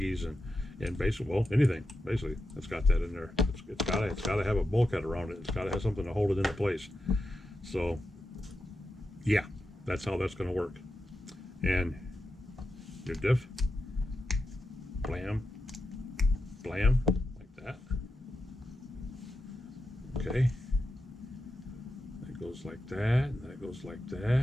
and basically, well, anything basically that's got that in there. It's got to have a bulkhead around it. It's got to have something to hold it into place. So yeah, that's how that's going to work. And your diff, blam, blam, like that. Okay, that goes like that, and that goes like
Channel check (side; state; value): both; normal; correlation 0.88